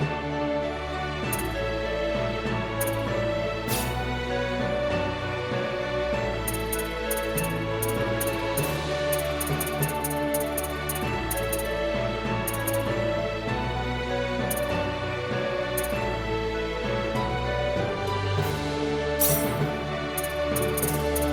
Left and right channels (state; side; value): identical; both; correlation 1.00